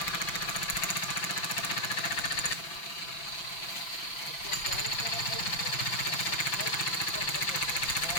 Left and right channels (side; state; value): right; late; 5.9 ms